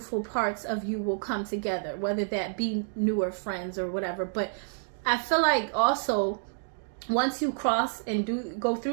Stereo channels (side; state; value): left; silent; digital silence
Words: parts of you will come together, whether that be newer friends or whatever. But I feel like also once you cross and go